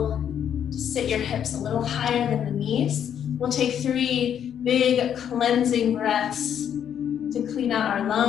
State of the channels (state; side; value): quieter; right; 9.1 dB